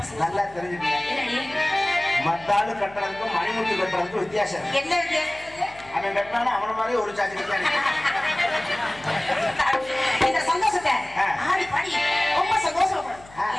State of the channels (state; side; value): noise; left; hum, 22 dB below the sound